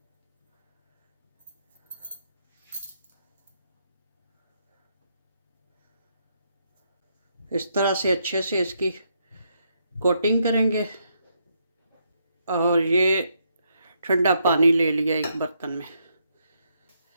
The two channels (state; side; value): inverted; both; correlation -0.77